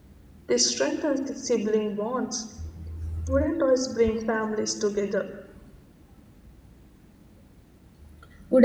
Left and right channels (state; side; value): identical; both; correlation 1.00